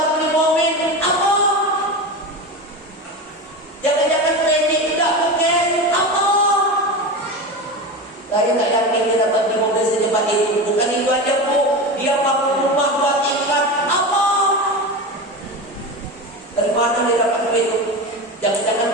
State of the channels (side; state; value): both; normal; correlation 0.23